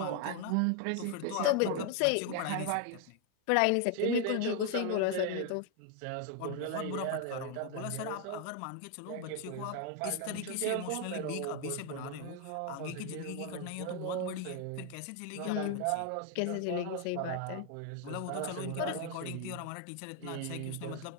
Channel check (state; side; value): different; both; correlation 0.00